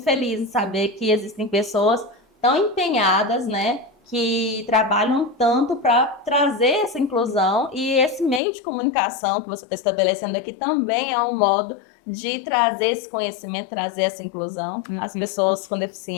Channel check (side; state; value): right; drops out; at 8.4 s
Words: feliz em saber que existem pessoas tão empenhadas, né, que trabalham tanto para trazer essa inclusão, e esse meio de comunicação que você está estabelecendo aqui também é um modo de trazer esse conhecimento, trazer essa inclusão às pessoas com